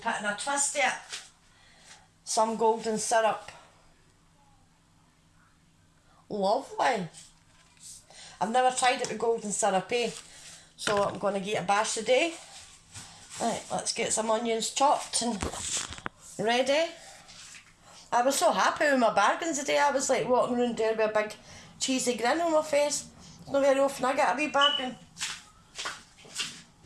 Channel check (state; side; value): identical; both; correlation 1.00